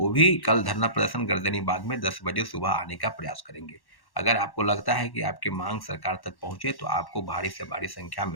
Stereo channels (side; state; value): right; late; 1.1 ms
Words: भी कल धरना प्रदर्शन गर्दनी बाग में 10 बजे सुबह आने का प्रयास करेंगे। अगर आपको लगता है कि आपकी मांग सरकार तक पहुंचे तो आपको भारी से भारी संख्या